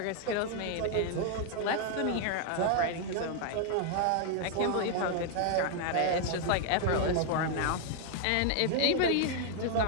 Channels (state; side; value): different; both; correlation 0.00